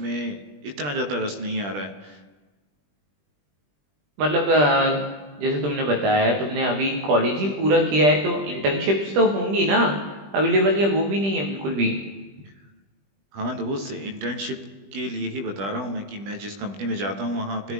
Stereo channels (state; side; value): late; left; 20 ms